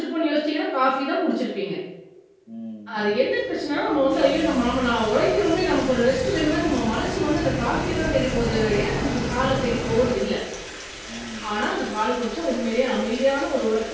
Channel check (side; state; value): both; identical; correlation 1.00